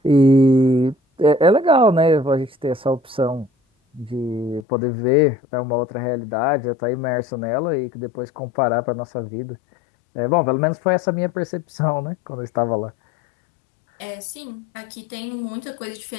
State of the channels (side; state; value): right; drops out; at 4.7 s